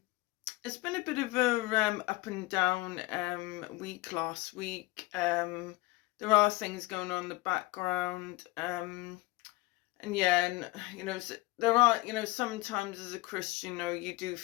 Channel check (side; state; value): right; quieter; 20.4 dB